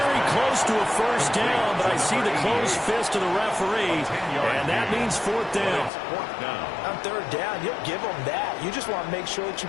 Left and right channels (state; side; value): drops out; right; at 5.9 s